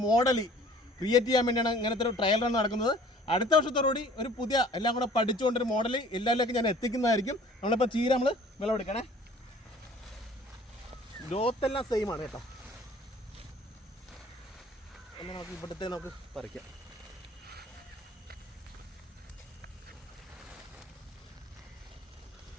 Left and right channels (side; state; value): both; normal; correlation 0.51